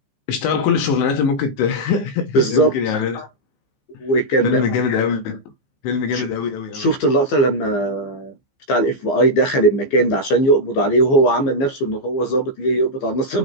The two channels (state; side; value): late; right; 15 ms